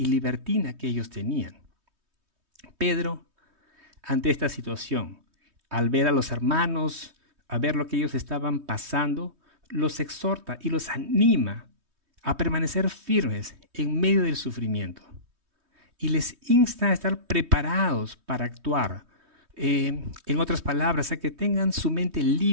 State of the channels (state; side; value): late; left; 3.2 ms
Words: libertina que ellos tenían. Pedro, ante esta situación, al ver a los hermanos, a ver lo que ellos estaban pasando, los exhorta y los anima a permanecer firmes en medio del sufrimiento. Y les insta a estar preparados para actuar. En otras palabras, a que tengan su mente